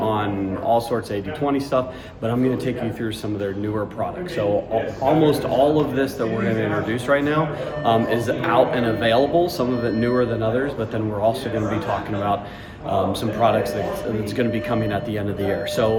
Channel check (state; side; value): identical; both; correlation 1.00